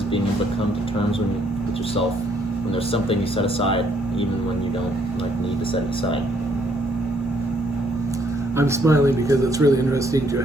being able to come to terms with yourself when there's something you set aside, even when you don't need to set it aside. I'm smiling because it's really interesting to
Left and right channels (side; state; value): both; normal; correlation 0.68